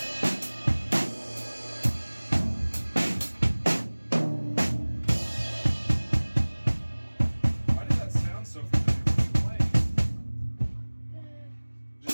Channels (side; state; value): both; inverted; correlation -1.00